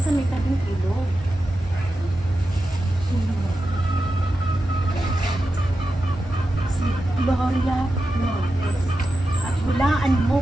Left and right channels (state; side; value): normal; both; correlation 0.90